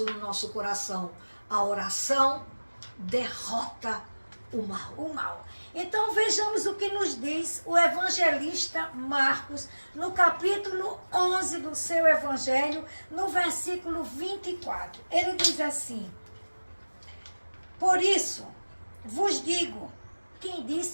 no nosso coração. A oração derrota o mal. Então vejamos o que nos diz o evangelista Marcos, no capítulo 11 do seu evangelho, no versículo 24. Ele diz assim: por isso vos digo, quem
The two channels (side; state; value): both; inverted; correlation -1.00